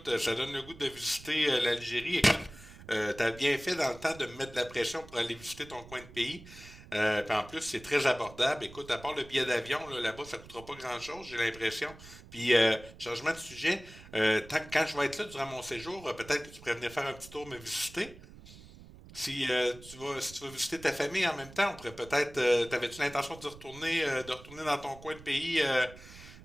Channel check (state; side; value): noise; right; rumble, 18 dB below the sound